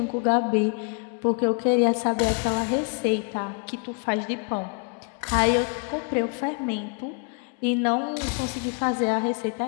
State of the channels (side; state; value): right; quieter; 37.7 dB